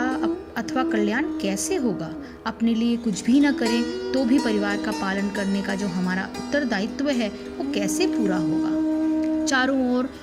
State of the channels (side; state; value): both; identical; correlation 1.00